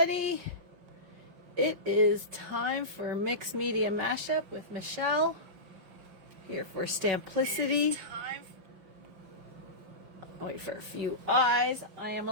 It is time for Mixed Media Mashup with Michelle here for Stamplicity. Wait for a few eyes. I am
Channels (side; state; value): left; late; 5.7 ms